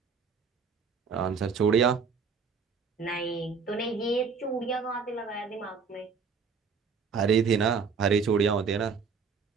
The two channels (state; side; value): quieter; left; 5.6 dB